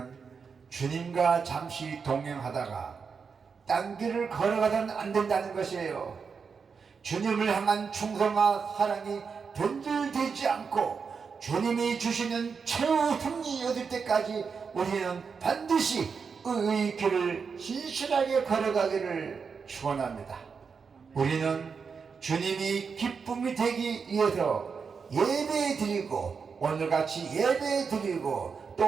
주님과 잠시 동행하다가 딴 길을 걸어가서는 안 된다는 것이에요. 주님을 향한 충성과 사랑이 변질되지 않고 주님이 주시는 최후 승리 얻을 때까지 우리는 반드시 의의 길을 신실하게 걸어가기를 축원합니다. 우리는 주님이 기쁨이 되기 위해서 예배 드리고 오늘같이 예배 드리고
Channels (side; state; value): left; quieter; 5.7 dB